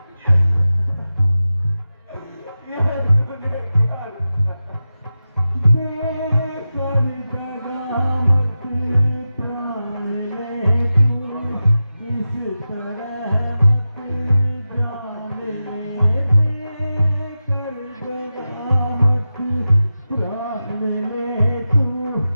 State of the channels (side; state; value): both; inverted; correlation -0.93